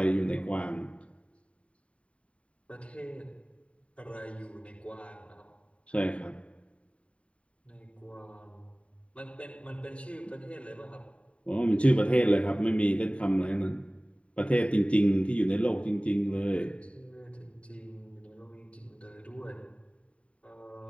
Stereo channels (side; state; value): right; late; 0.063 ms